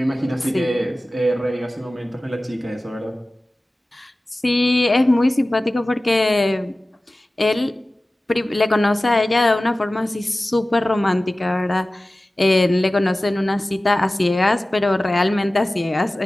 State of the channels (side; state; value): both; normal; correlation 0.97